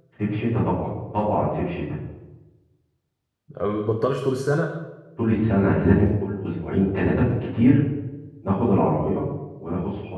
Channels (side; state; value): both; identical; correlation 1.00